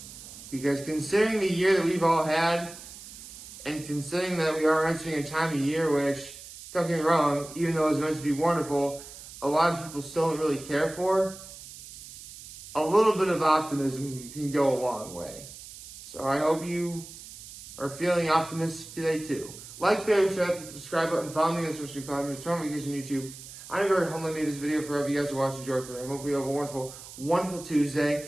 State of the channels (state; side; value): noise; right; hiss, 15 dB below the sound